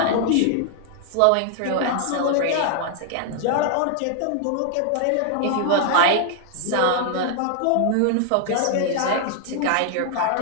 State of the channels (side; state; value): both; different; correlation 0.00